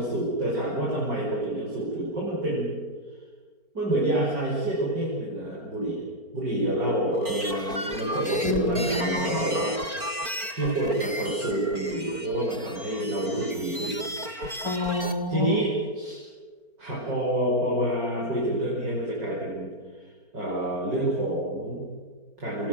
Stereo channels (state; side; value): late; left; 4.4 ms